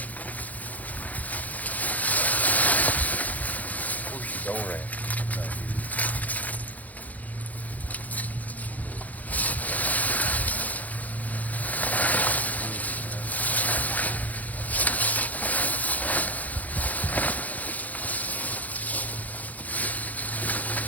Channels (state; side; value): late; right; 0.078 ms